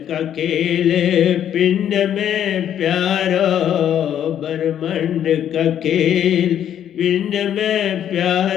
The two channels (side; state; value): right; quieter; 10.0 dB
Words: का खेल पिंड में प्यारो, ब्रह्मांड का खेल पिंड में